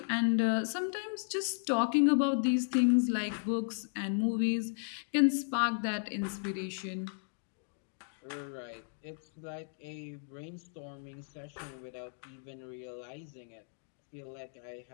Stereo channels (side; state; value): right; silent; digital silence